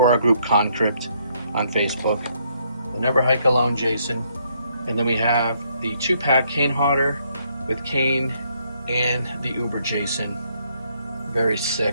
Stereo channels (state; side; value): inverted; both; correlation -0.72